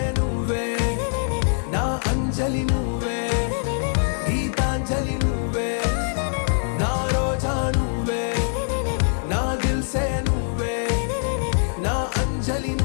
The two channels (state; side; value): silent; right; 62 dB below the other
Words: నువ్వే నా అంజలి నువ్వే గీతాంజలి నువ్వే నా రోజా నువ్వే నా దిల్ సే నువ్వే నా అంజలి